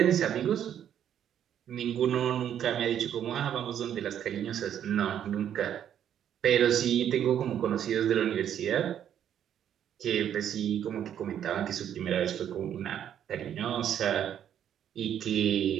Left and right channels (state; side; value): quieter; left; 9.8 dB